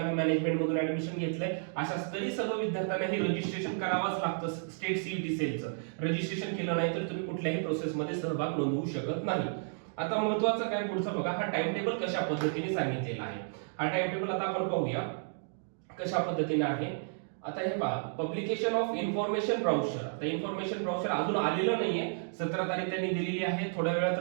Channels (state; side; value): silent; left; digital silence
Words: मॅनेजमेंट मधून ऍडमिशन घेतलंय, अशा तरी सर्व विद्यार्थ्यांना हे रजिस्ट्रेशन करावंच लागतं. स्टेट सीईटी सेलचं रजिस्ट्रेशन केलं नाही तर तुम्ही कुठल्याही प्रोसेस मध्ये सहभाग नोंदवू शकत नाही. आता महत्वाचं काय पुढचं बघा, हा टाइम टेबल कशा पद्धतीने सांगितलेला आहे. हा टाइम टेबल आता आपण पाहूया कशा पद्धतीने आहे. आता हे पहा, पब्लिकेशन ऑफ इन्फॉर्मेशन ब्राउचर. आता इन्फॉर्मेशन ब्राउचर अजून आलेलं नाहीये. 17 तारीख त्यांनी दिलेली आहे. थोड्या वेळात